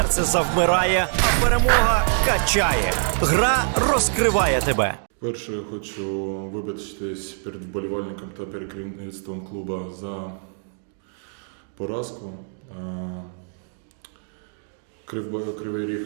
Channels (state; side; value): silent; left; digital silence